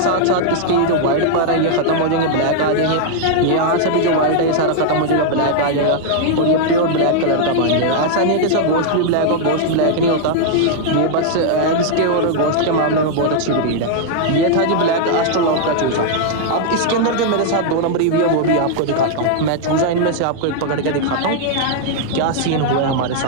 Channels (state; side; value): different; both; correlation -0.01